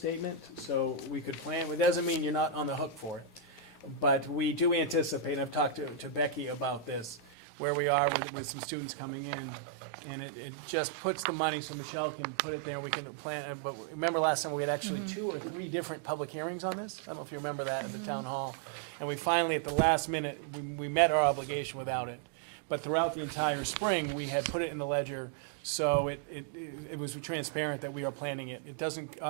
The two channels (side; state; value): left; drops out; at 7.3 s